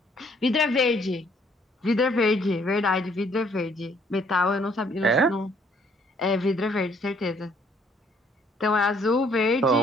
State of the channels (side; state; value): both; normal; correlation 0.64